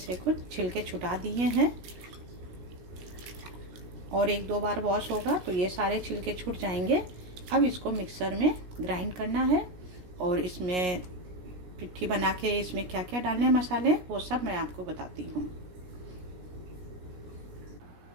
कुछ छिलके छुटा दिए हैं और 1-2 बार वॉश होगा तो ये सारे छिलके छूट जाएंगे। अब इसको मिक्सर में ग्राइंड करना है और इसमें पिट्ठी बना के इसमें क्या क्या डालने हैं मसाले, वो सब मैं आपको बताती हूँ।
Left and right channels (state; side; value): late; left; 17 ms